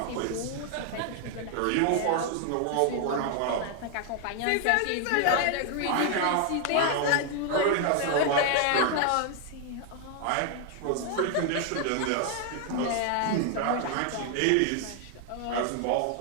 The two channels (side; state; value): both; different; correlation 0.00